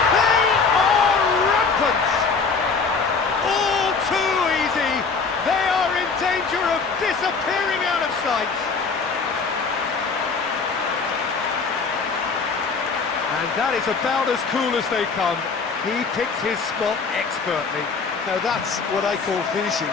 They are rampant! All too easy! They are in danger of disappearing out of sight! And that is about as cool as they come. He picked his spot expertly. Now that's what I call finishing,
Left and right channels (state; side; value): quieter; right; 4.9 dB